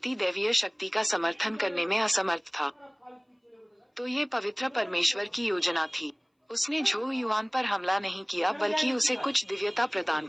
दैवीय शक्ति का समर्थन करने में असमर्थ था। तो ये पवित्र परमेश्वर की योजना थी। उसने झो युआन पर हमला नहीं किया, बल्कि उसे कुछ दिव्यता प्रदान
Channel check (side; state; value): both; identical; correlation 1.00